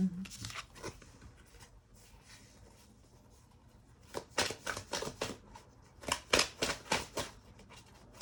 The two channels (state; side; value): identical; both; correlation 1.00